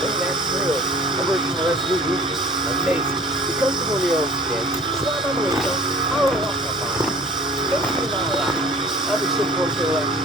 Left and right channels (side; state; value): both; normal; correlation 0.47